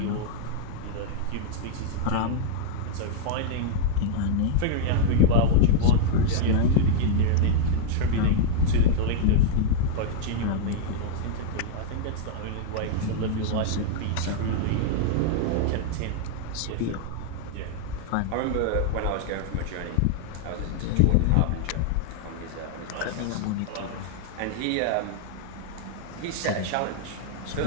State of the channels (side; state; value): both; different; correlation -0.01